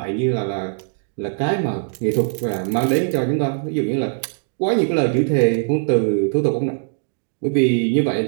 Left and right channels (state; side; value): silent; left; digital silence